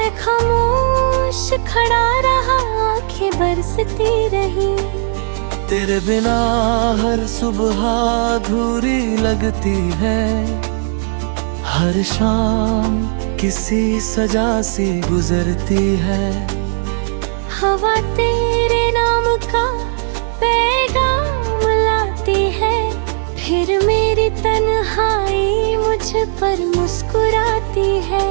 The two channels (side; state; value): left; silent; 64 dB below the other